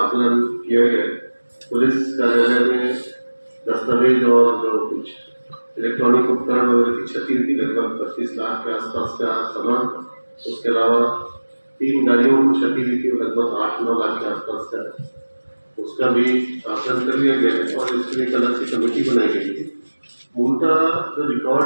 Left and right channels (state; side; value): inverted; both; correlation -1.00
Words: किया गया। पुलिस कार्यालय में दस्तावेज और जो कुछ इलेक्ट्रॉनिक उपकरण वगैरह की क्षति हुई थी लगभग 25 लाख के आसपास का सामान। उसके अलावा 3 गाड़ियों को क्षति हुई थी लगभग 8-9 लाख के आसपास का, उसका भी आकलन कर लिया गया और इसके लिए एक अलग से कमेटी बनाई गई थी। उनका जो रिकॉर्ड